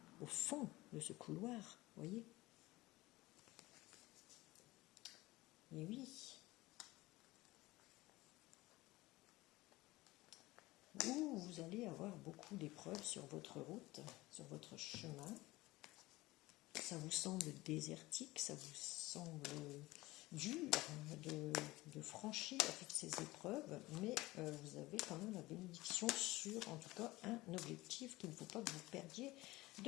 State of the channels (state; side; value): quieter; right; 19.5 dB